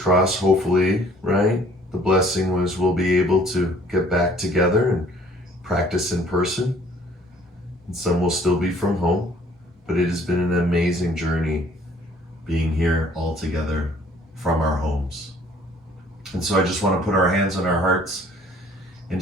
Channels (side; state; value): both; normal; correlation 0.57